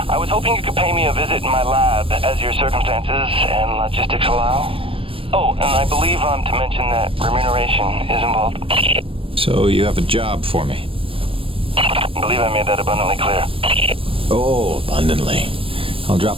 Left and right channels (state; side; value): late; left; 0.26 ms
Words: I was hoping you could pay me a visit in my lab as your circumstances and logistics allow. Oh, and I believe I'm to mention that remuneration is involved. So you have a job for me? I believe I made that abundantly clear. Oh, abundantly. I'll drop